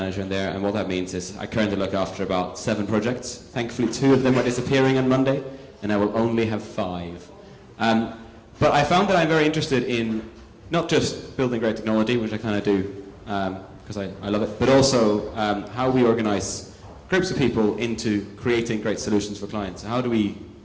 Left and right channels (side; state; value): both; identical; correlation 1.00